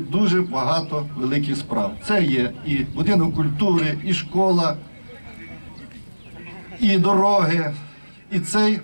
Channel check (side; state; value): both; inverted; correlation -1.00